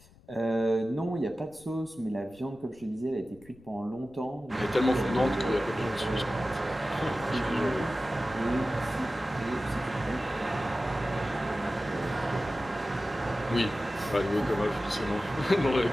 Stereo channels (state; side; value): noise; left; rumble, 25 dB below the sound